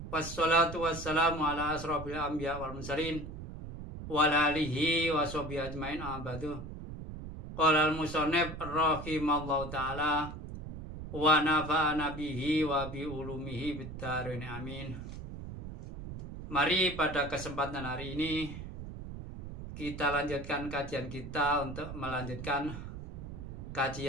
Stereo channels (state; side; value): noise; right; rumble, 10 dB below the sound